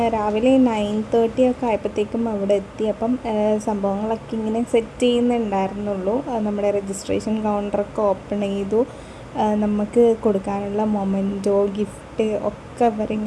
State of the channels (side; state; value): both; identical; correlation 1.00